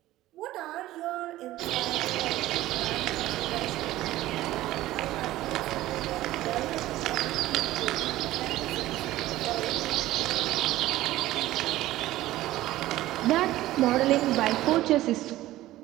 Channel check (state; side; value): quieter; left; 15.8 dB